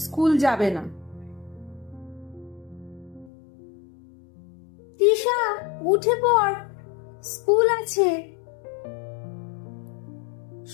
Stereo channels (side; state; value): right; drops out; at 3.3 s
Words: স্কুল যাবে না। তৃষা উঠে পড়, স্কুল আছে।